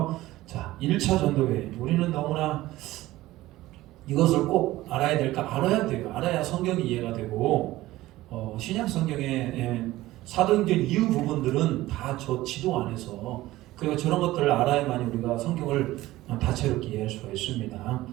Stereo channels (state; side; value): quieter; left; 16.9 dB